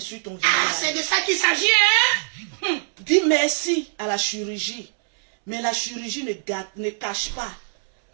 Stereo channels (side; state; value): left; silent; 63 dB below the other